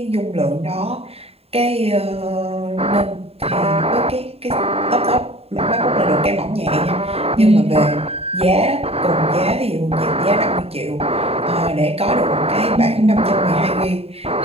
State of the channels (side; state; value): left; late; 0.29 ms